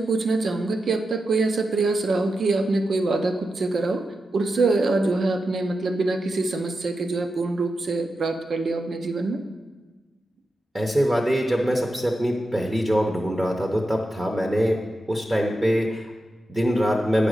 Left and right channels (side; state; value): both; normal; correlation 0.90